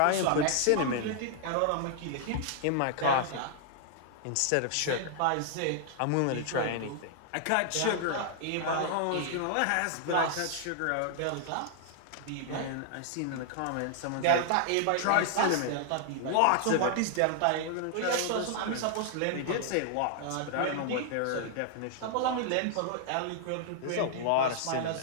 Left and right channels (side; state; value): both; different; correlation 0.00